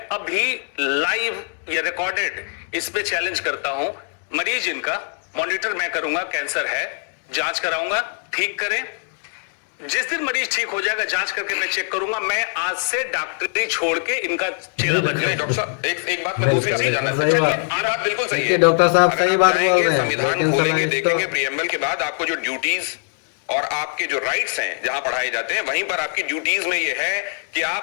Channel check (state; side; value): silent; right; 64 dB below the other